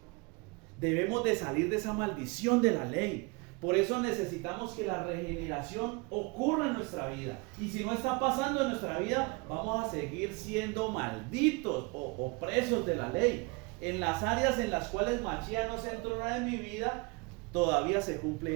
Debemos de salir de esa maldición de la ley. Por eso necesitamos que la regeneración ocurra en nuestra vida. Y si no está pasando en nuestra vida, vamos a seguir siendo malditos o presos de la ley. En las áreas en las cuales Machía no se entrona en mi vida, todavía se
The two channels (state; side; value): quieter; left; 28.2 dB